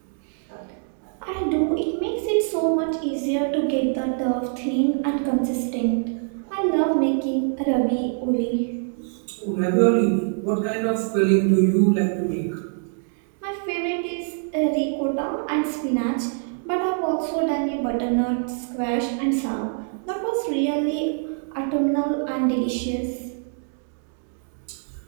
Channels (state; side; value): silent; left; 62 dB below the other